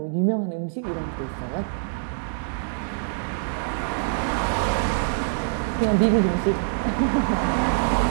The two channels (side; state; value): left; silent; digital silence